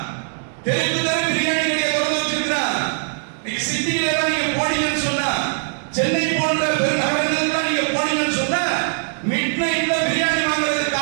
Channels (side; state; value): left; silent; 65 dB below the other